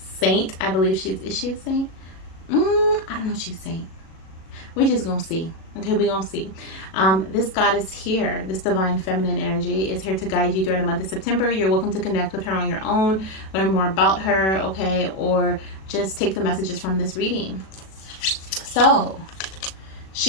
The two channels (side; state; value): right; late; 37 ms